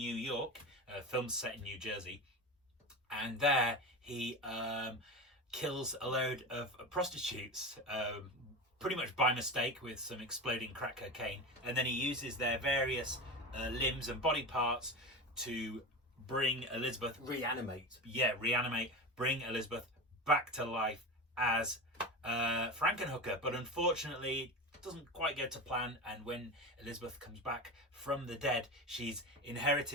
York, films set in New Jersey, and there he kills a load of prostitutes, pretty much by mistake with some exploding crack cocaine, and then he uses their various limbs and body parts to bring Elizabeth... Reanimate. Yeah, reanimate. Bring Elizabeth back to life as Frankenhooker, but unfortunately it doesn't quite go to plan, and when Elizabeth comes back from the dead, she's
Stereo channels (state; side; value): normal; both; correlation 0.25